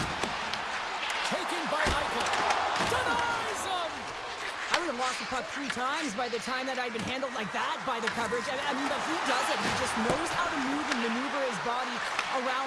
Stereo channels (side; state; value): both; identical; correlation 1.00